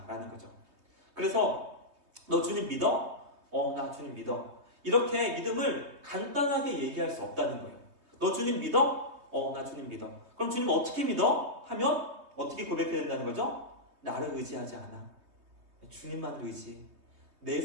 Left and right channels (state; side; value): late; left; 3.2 ms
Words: 거죠. 그래서 너 주님 믿어? 나 주님 믿어. 이렇게 믿음을 간단하게 얘기할 수 없다는 거예요. 너 주님 믿어? 나 주님 믿어. 그럼 주님 어떻게 믿어? 하면 어떻게 고백해야 된다는 거죠? 나를 의지하지 않아. 주님만을 의지. 내